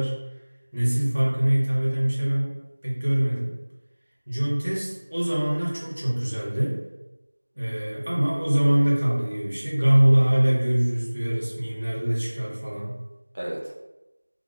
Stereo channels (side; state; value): both; inverted; correlation -1.00